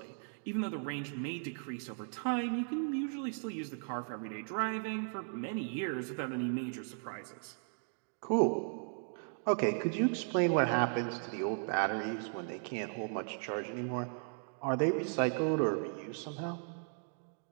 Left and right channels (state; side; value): silent; left; 53 dB below the other